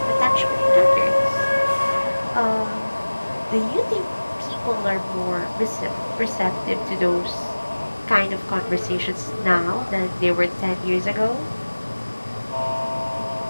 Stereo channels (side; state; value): both; inverted; correlation -1.00